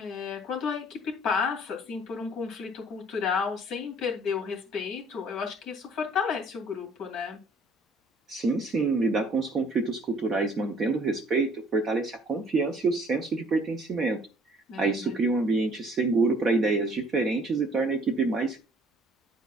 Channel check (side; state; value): both; normal; correlation 0.57